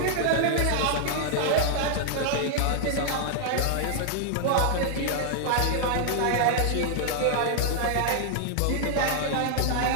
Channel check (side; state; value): both; different; correlation -0.01